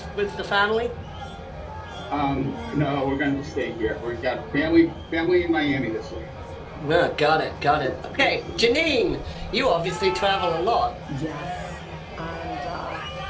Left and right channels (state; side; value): identical; both; correlation 1.00